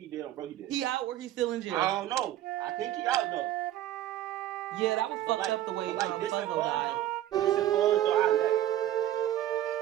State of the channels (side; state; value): left; quieter; 12.9 dB